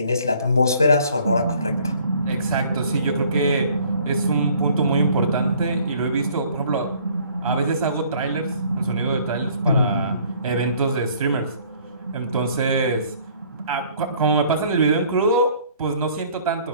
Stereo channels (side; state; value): both; inverted; correlation -0.58